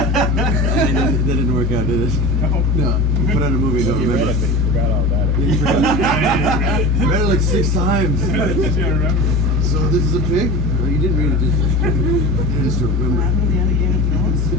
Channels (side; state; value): both; normal; correlation 0.32